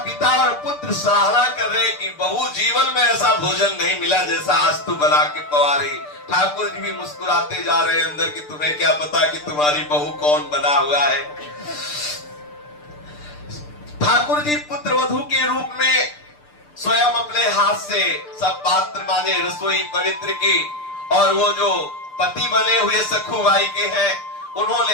पिता और पुत्र सराहना कर रहे कि बहू जीवन में ऐसा भोजन नहीं मिला जैसा आज तू बना के पवा रही। ठाकुर जी भी मुस्कुराते जा रहे हैं अंदर कि तुम्हें क्या पता कि तुम्हारी बहू कौन बना हुआ है। ठाकुर जी पुत्र वधू के रूप में स्वयं अपने हाथ से सब पात्र माने, रसोई पवित्र की। और वो जो पति बने हुए सखुबाई के हैं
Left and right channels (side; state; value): right; late; 6.7 ms